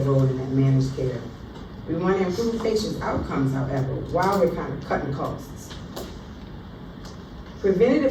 in that managed care. We want to improve patients' outcomes, however, while we're kind of cutting costs.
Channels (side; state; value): both; identical; correlation 1.00